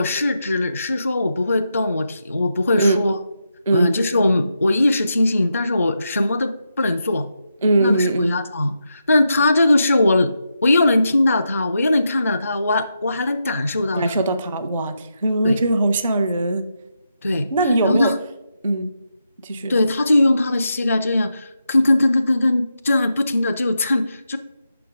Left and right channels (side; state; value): both; inverted; correlation -0.85